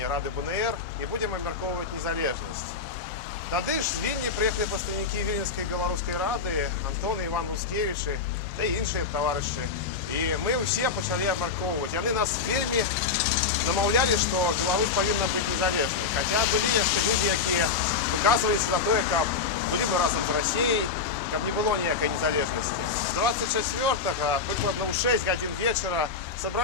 Рады БНР і будзем абмяркоўваць незалежнасць. Тады ж з Вільні прыехалі прадстаўнікі Віленскай беларускай рады, Антон і Іван Луцкевічы, та і іншыя таварышы. І мы ўсе пачалі абмяркоўваць. Яны нас вельмі намаўлялі, што Беларусь павінна быць незалежнай. Хаця былі яшчэ людзі, якія выказваліся за тое, каб былі мы разам з Расіяй, каб не было ніякай незалежнасці. 24-го, прыкладна ў 6 гадзін вечара,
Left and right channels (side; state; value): right; quieter; 5.0 dB